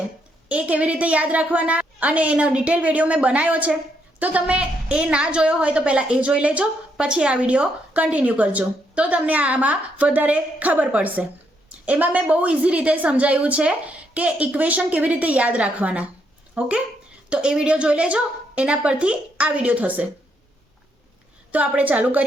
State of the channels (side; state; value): both; normal; correlation 0.75